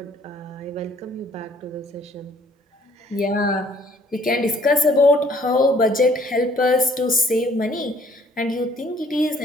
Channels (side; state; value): both; normal; correlation 0.59